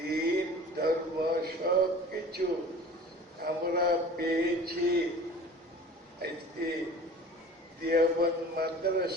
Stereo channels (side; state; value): both; normal; correlation 0.42